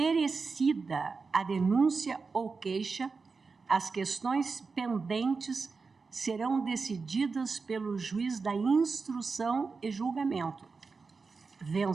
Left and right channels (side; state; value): left; quieter; 4.6 dB